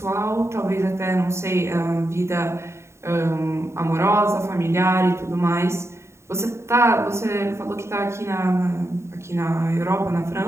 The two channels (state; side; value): late; left; 0.13 ms